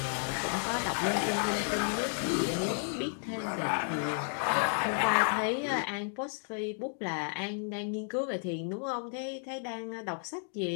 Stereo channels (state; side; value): silent; right; 56 dB below the other